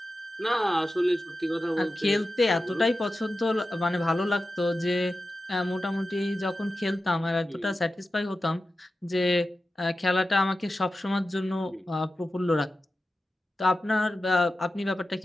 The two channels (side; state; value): both; normal; correlation 0.93